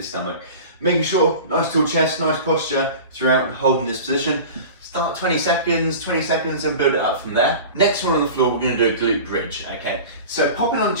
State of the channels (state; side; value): inverted; both; correlation -0.36